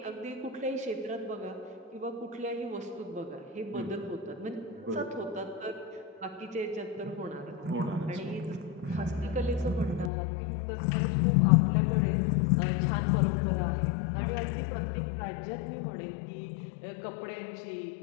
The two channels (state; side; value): drops out; right; at 10.1 s